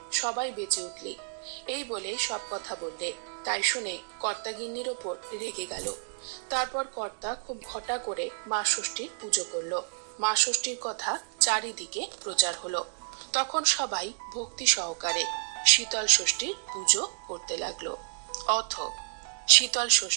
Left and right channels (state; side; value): silent; left; digital silence